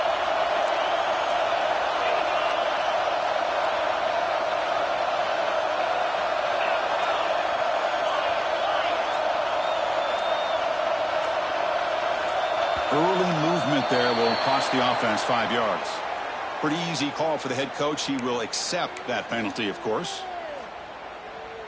Early movement there will cost the offense 5 yards. Pretty easy call for the head coach. He will accept that penalty, of course.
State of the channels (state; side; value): identical; both; correlation 1.00